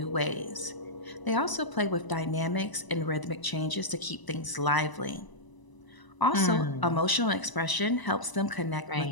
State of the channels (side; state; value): right; late; 1.0 ms